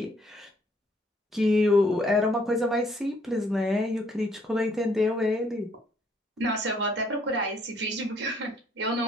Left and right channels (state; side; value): normal; both; correlation 0.65